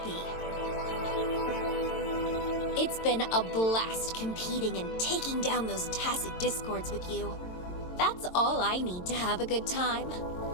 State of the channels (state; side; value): late; right; 22 ms